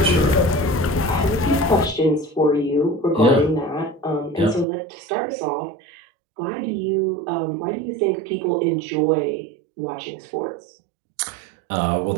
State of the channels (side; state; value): left; drops out; at 4.7 s